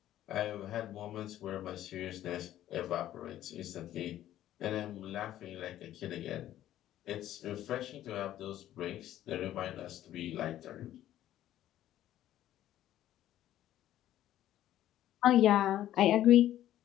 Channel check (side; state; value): right; quieter; 12.8 dB